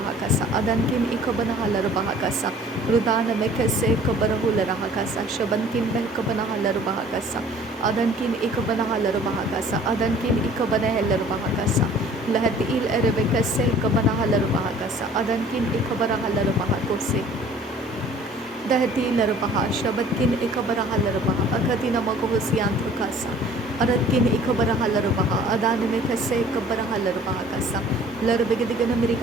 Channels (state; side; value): normal; both; correlation 0.51